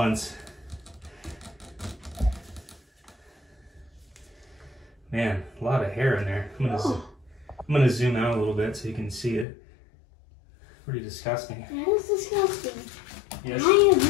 Man, a lot of hair in there. I'm gonna zoom out a little bit so you can see it. Pretty disgusting. That is disgusting. Yes. I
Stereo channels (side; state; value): right; drops out; at 9.5 s